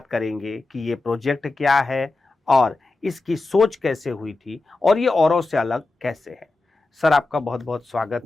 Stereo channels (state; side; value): quieter; right; 3.3 dB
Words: करेंगे कि ये प्रोजेक्ट क्या है और इसकी सोच कैसे हुई थी और ये औरों से अलग कैसे है। सर, आपका बहुत बहुत